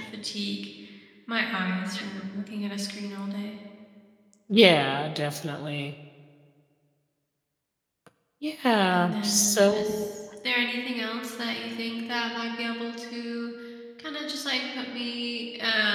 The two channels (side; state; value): both; identical; correlation 1.00